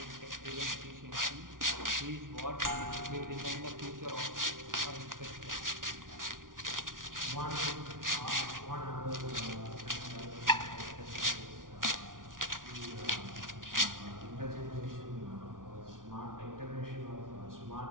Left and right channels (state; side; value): late; left; 0.89 ms